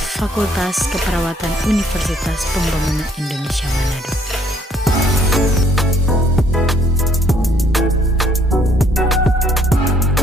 Fakultas Keperawatan Universitas Pembangunan Indonesia Manado.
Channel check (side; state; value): both; normal; correlation 0.64